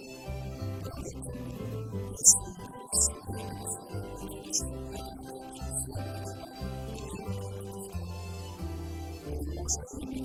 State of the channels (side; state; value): both; identical; correlation 1.00